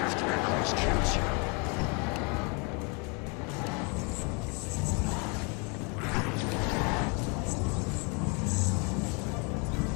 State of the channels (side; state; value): right; quieter; 33.2 dB